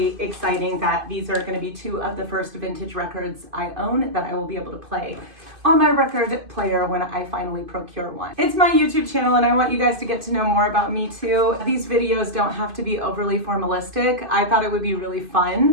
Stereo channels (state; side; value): late; left; 2.5 ms